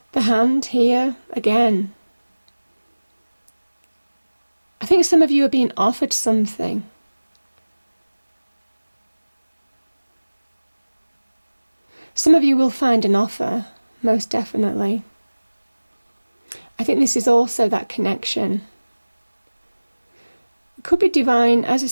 the hand here again. I think some of you are being offered something. Some of you will find an offer, most definitely. I think this is also that connection. It could be divine. As I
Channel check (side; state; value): both; inverted; correlation -1.00